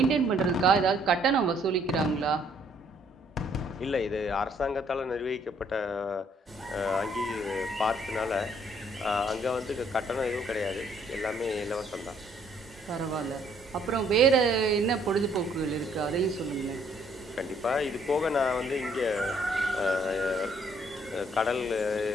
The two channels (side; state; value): both; normal; correlation 0.65